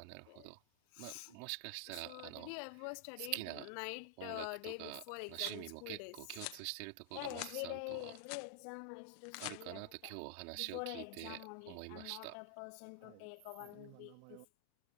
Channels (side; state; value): both; different; correlation 0.00